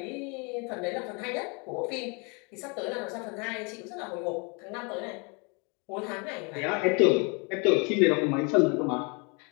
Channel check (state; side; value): quieter; right; 31.8 dB